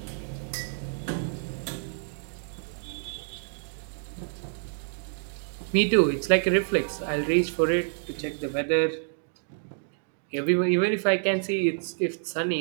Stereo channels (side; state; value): left; silent; digital silence